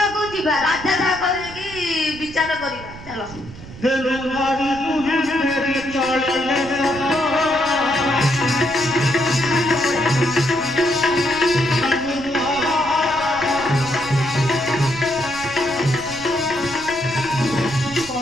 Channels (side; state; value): right; noise; rumble, 16 dB below the sound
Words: ଯିବା। ରାଜା କହିକି ବିଚାର କରିବା। ଚାଲ।